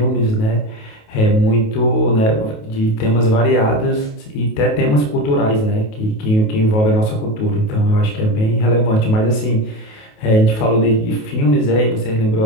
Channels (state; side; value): late; right; 28 ms